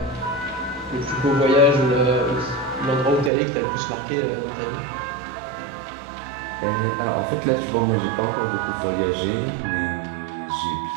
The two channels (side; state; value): left; drops out; at 3.3 s